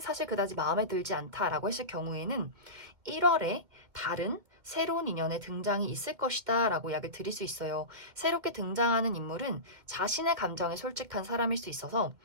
그다지 마음에 들지 않다라고 했을 경우에는 1월에 다른 새로운 인연의 등장이 있을 것이다 라고 이야기를 드릴 수 있어요. 새롭게 등장하는 인물은 자신의 감정에 솔직한 사람일 수 있어서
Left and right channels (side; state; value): left; late; 2.2 ms